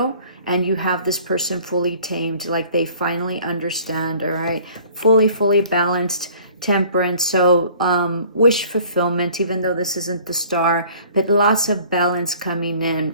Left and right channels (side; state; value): both; inverted; correlation -0.52